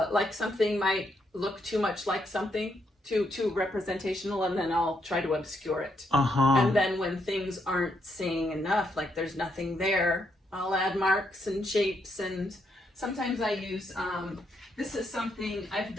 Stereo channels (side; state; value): both; normal; correlation 0.77